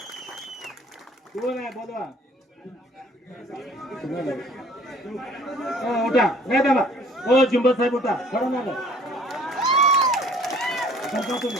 कोण आहे? बोलवा. उठा. नाही दादा. हो जिंबल साहेब उठा. पडणार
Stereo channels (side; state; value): both; normal; correlation 0.54